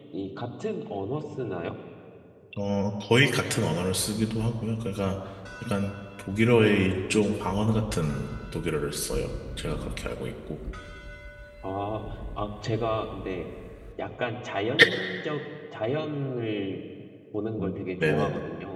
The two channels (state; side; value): identical; both; correlation 1.00